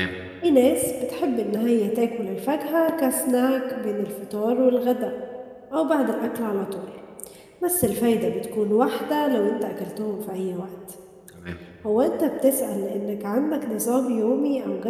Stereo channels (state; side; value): identical; both; correlation 1.00